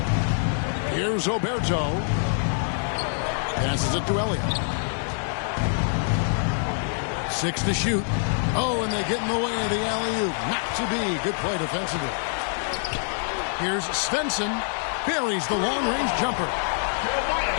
Here's Oberto. Passes it to Elliott. 6 to shoot. Oh, and they get in the way of the alley-oop. Not to be. Good play defensively. Here's Svensson. Buries the long-range jumper.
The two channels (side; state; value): right; silent; digital silence